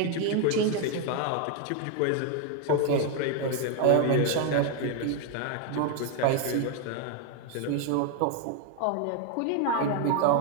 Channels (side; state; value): both; different; correlation 0.01